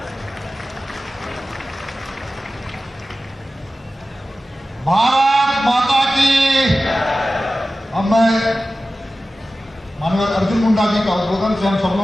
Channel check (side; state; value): both; normal; correlation 0.95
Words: भारत माता की। अब मैं माननीय अर्जुन मुंडा जी का उद्बोधन से हम सब